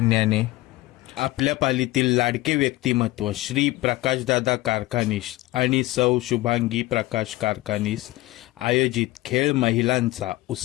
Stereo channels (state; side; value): quieter; right; 19.0 dB